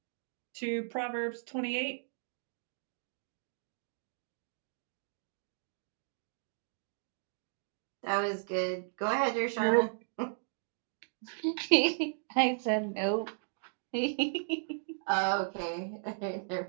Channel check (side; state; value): left; silent; digital silence